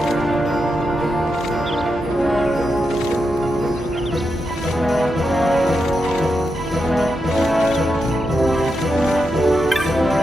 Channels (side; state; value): both; normal; correlation 0.86